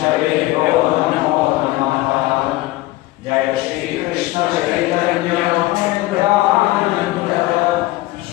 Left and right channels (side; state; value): right; quieter; 18.3 dB